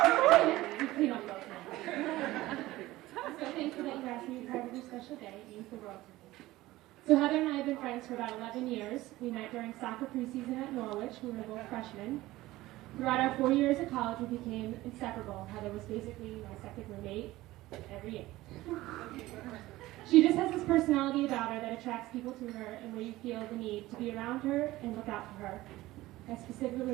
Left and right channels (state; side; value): quieter; left; 17.5 dB